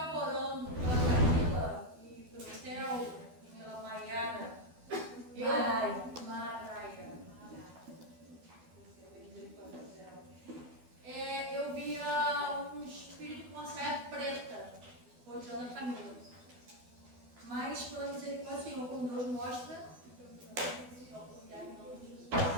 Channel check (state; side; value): late; left; 12 ms